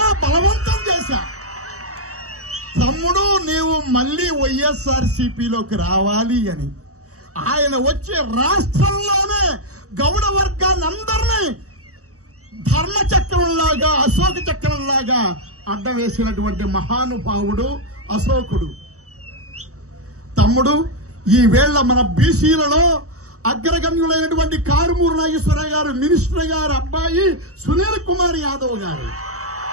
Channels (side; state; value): left; late; 0.65 ms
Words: బలవంతం చేశా. తమ్ముడు, నీవు మళ్ళీ వైఎస్ఆర్సీపీలోకి రావాలి అని. ఆయన వచ్చి రాష్ట్రంలోనే గౌడ వర్గాన్ని అందరినీ ధర్మచక్రంలాగా, అశోక చక్రంలాగా అడ్డం వేసినటువంటి మహానుభావుడు అశోకుడు. తమ్ముడు, ఈ వేళ మన బీసీలలో అగ్రగణ్యులైనటువంటి కారుమూరి నాగేశ్వరరావు గారు, మినిస్టర్ గారు అబ్బాయి సునీల్ కుమార్ యాదవ్ గారు,